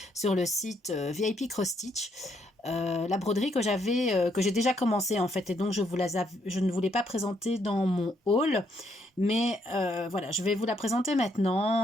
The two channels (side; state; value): both; normal; correlation 0.73